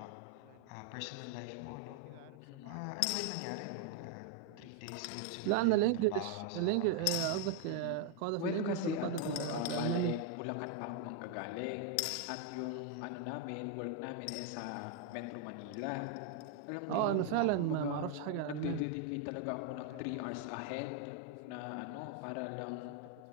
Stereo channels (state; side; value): different; both; correlation 0.01